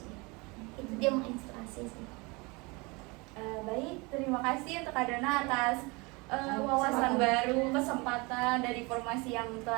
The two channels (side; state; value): left; quieter; 26.7 dB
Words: sih. Itu dia menginspirasi sih. Baik, terima kasih untuk Kak Dona atas wawasan baru, kesempatan dan informasi yang